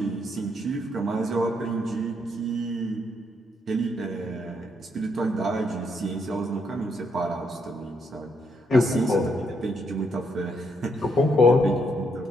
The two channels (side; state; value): both; normal; correlation 0.75